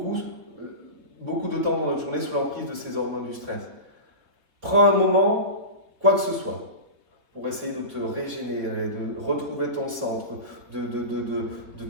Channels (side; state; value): left; late; 3.9 ms